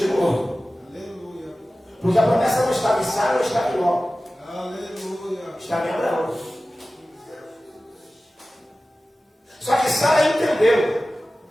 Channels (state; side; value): normal; both; correlation 0.96